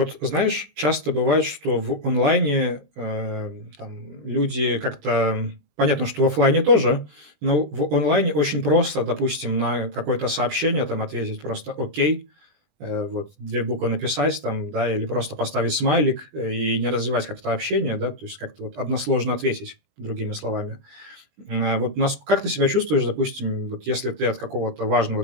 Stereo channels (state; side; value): late; left; 20 ms